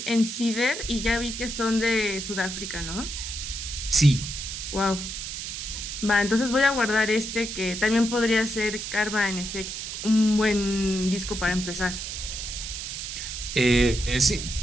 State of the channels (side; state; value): right; noise; hiss, 6 dB below the sound